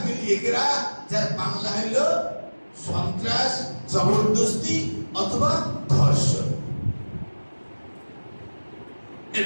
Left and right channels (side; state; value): both; inverted; correlation -1.00